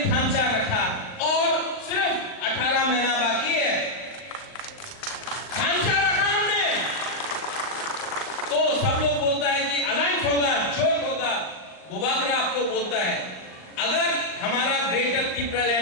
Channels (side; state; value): right; late; 39 ms